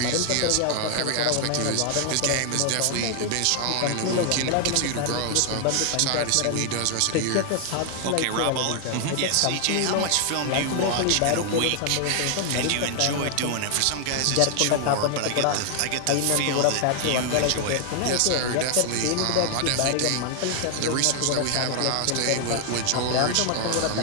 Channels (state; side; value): different; both; correlation 0.00